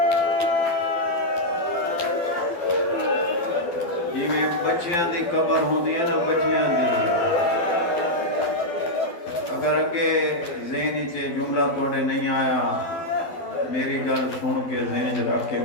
بچیاں دی قبر ہوندی ہے نا، بچیاں دی، اگر اگے ذہن چے جملہ توڑے نہیں آیا، میری گل سن کے ذہن رکھ کے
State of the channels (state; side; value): late; right; 12 ms